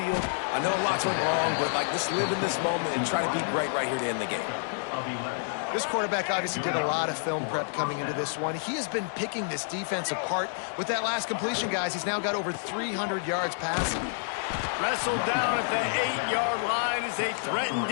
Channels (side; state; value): right; silent; digital silence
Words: I know lots went wrong, but let's live in this moment and try to be great right here to end the game. This quarterback obviously did a lot of film prep coming into this one. He has been picking this defense apart. With that last completion, guys, he's now got over 300 yards passing. Wrestled down at the 8-yard line as they threaten